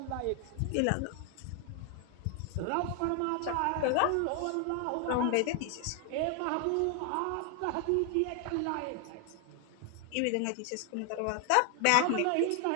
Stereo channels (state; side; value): different; both; correlation 0.00